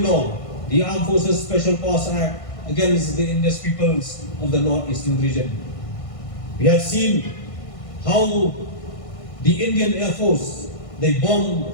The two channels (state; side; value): late; right; 1.5 ms